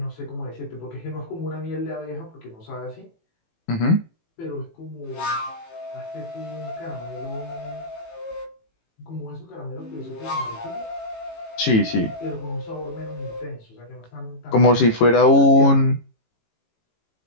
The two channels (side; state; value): right; late; 18 ms